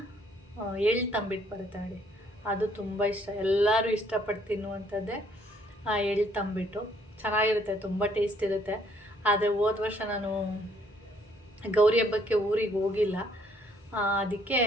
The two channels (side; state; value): both; normal; correlation 0.66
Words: ಎಳ್ಳು ತಂಬಿಟ್ಟು ಬರುತ್ತೆ ನೋಡಿ, ಅದು ತುಂಬ ಇಷ್ಟ. ಎಲ್ಲರೂ ಇಷ್ಟಪಟ್ಟು ತಿನ್ನುವಂಥದ್ದೇ ಆ ಎಳ್ಳು ತಂಬಿಟ್ಟು. ಚೆನ್ನಾಗಿರುತ್ತೆ, ತುಂಬ ಟೇಸ್ಟ್ ಇರುತ್ತೆ. ಆದರೆ ಹೋದ ವರ್ಷ ನಾನು ಗೌರಿ ಹಬ್ಬಕ್ಕೆ ಊರಿಗೆ ಹೋಗಿಲ್ಲ, ಅದಕ್ಕೆ